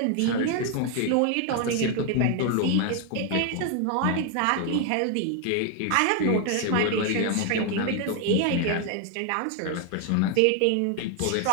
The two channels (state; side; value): different; both; correlation 0.01